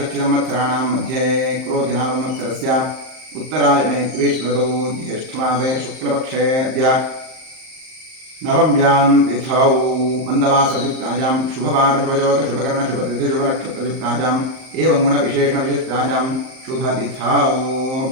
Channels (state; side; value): late; left; 38 ms